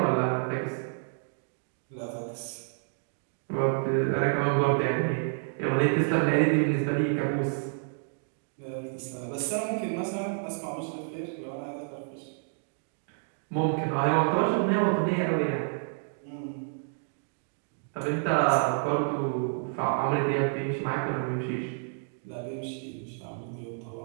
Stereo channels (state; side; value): silent; left; 58 dB below the other